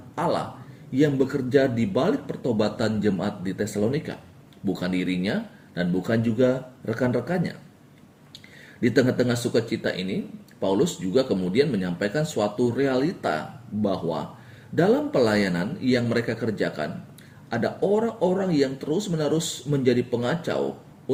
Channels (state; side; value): identical; both; correlation 1.00